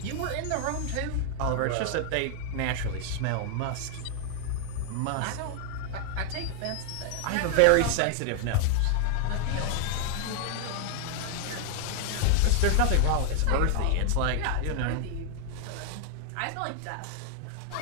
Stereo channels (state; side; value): different; both; correlation 0.00